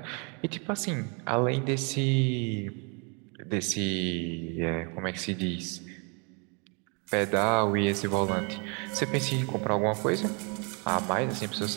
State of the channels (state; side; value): quieter; left; 34.5 dB